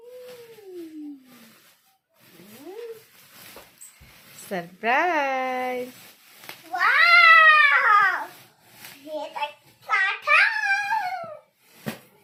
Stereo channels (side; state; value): both; identical; correlation 1.00